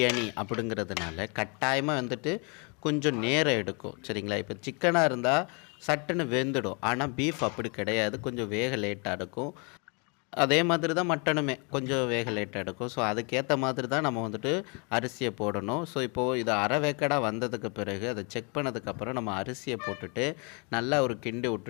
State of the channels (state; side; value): quieter; right; 33.8 dB